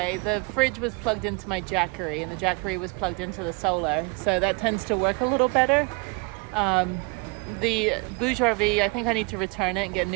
The fridge was plugged into my Jackery, and the Jackery was plugged into the solar. So that tends to work a little better. The Bourgeois V, I think I need to return it and get a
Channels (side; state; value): left; quieter; 31.8 dB